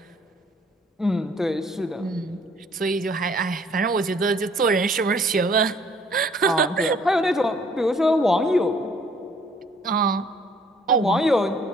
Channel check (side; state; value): both; normal; correlation 0.60